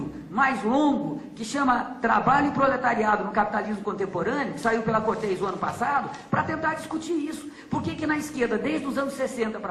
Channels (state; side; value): identical; both; correlation 1.00